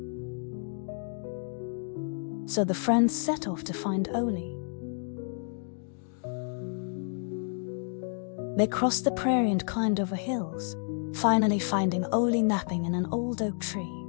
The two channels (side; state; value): right; silent; 58 dB below the other